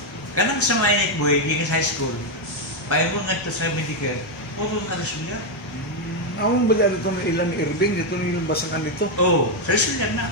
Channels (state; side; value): normal; both; correlation 0.03